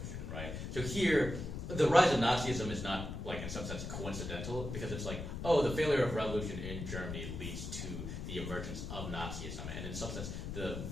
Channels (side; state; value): left; noise; rumble, 6 dB below the sound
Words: right? So here, the rise of Nazism is not, like, in some sense coincidental, because it's like, the failure of revolution in Germany leads to the emergence of Nazism, and in some sense, the